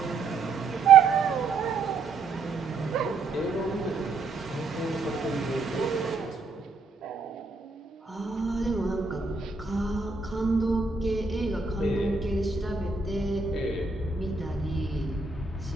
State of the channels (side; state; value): left; quieter; 4.5 dB